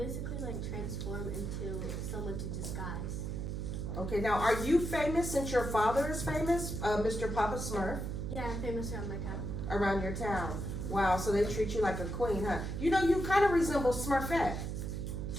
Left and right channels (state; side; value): noise; right; hum, 3 dB below the sound